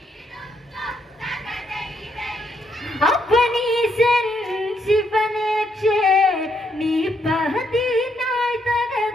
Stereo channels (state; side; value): normal; both; correlation 0.75